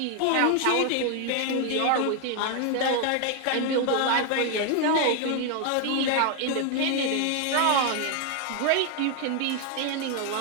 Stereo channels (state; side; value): different; both; correlation 0.00